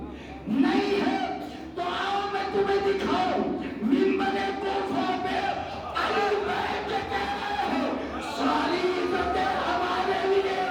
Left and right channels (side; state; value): both; identical; correlation 1.00